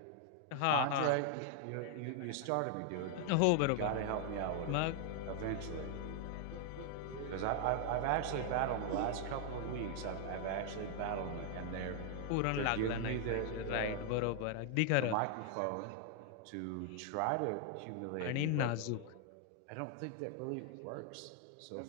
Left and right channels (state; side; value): different; both; correlation 0.00